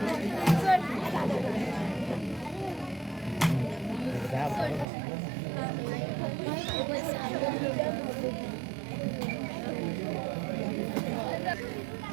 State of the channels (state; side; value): drops out; left; at 4.9 s